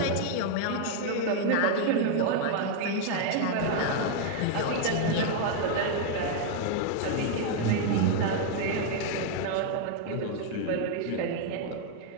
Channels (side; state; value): both; different; correlation 0.00